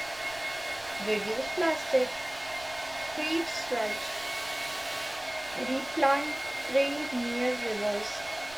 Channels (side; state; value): right; noise; rumble, 21 dB below the sound